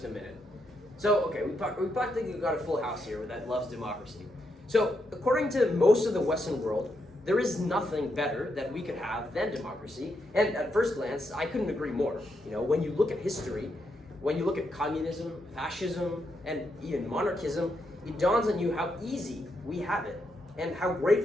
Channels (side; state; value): both; normal; correlation 0.81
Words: in a minute. So, okay, we practically got a full house here that loves democracy. So, according to most of the Western world, there is nothing better that we could have than democracy. And at first glance, I couldn't agree more. You know, when you look at history, when you look at communism, fascism, and even monarchism, it dawns on you how easy we have it and how